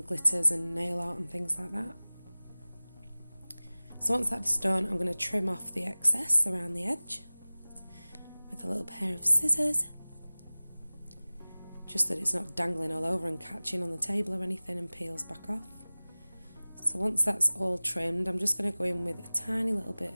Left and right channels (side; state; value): both; inverted; correlation -1.00